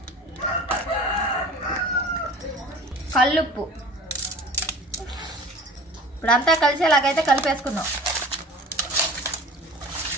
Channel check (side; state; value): both; normal; correlation 0.41